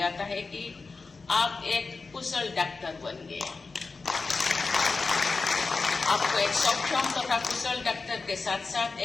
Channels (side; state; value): right; quieter; 4.2 dB